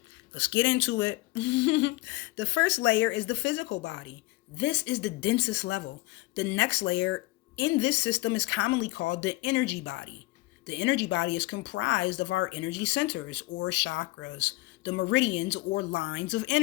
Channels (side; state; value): right; quieter; 21.0 dB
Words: Let's get into it. The first layer is the physical body. This is the densest level. The next layer in this system is commonly called the energy body. The energy body is comprised of our energy centers or chakras, the meridians or lines of